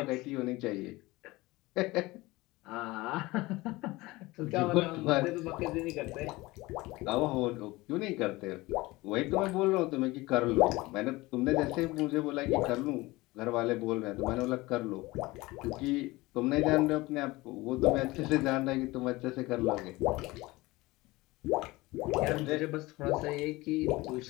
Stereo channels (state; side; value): quieter; right; 20.8 dB